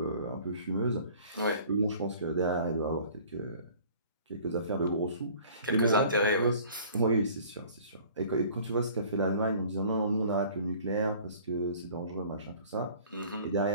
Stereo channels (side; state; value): both; inverted; correlation -0.51